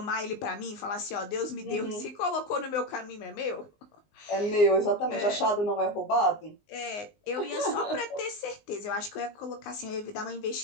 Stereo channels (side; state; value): right; late; 19 ms